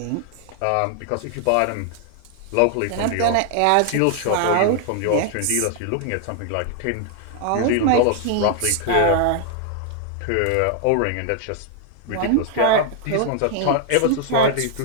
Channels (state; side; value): different; both; correlation 0.00